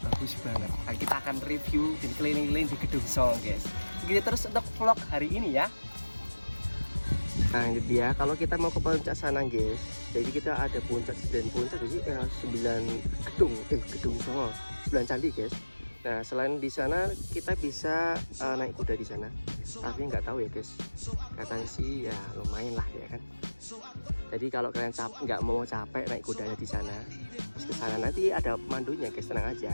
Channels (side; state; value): both; inverted; correlation -1.00